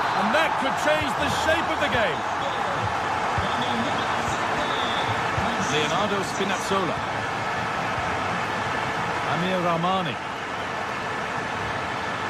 And that could change the shape of the game. Leonardo Spinazzola. Amir Rahmani.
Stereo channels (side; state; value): both; identical; correlation 1.00